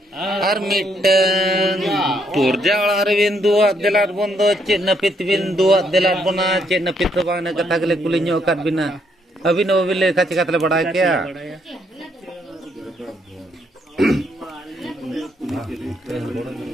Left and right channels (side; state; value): both; normal; correlation 0.73